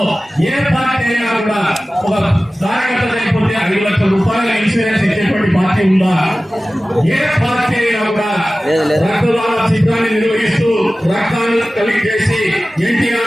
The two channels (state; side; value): normal; both; correlation 0.96